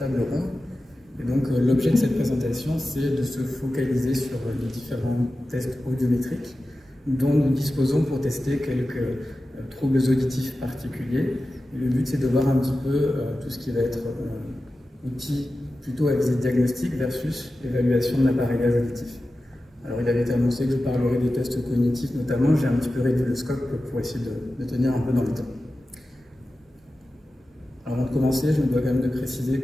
ronde. Et donc l'objet de cette présentation, c'est de se focaliser sur les différents tests audiométriques dont nous disposons pour tester quelques troubles auditifs particuliers. Et le but, c'est de voir un petit peu tout ce qui va être outil plutôt à visée diagnostique versus évaluation de l'appareillage auditif. Alors il avait été annoncé que je parlerai des tests cognitifs notamment, j'ai un petit peu réduit le scope pour essayer de tenir un peu dans le temps. Avant de commencer, je me dois quand même de préciser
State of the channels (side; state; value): both; normal; correlation 0.94